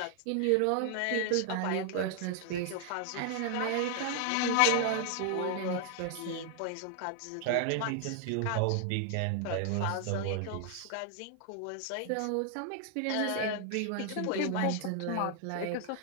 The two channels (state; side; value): different; both; correlation 0.00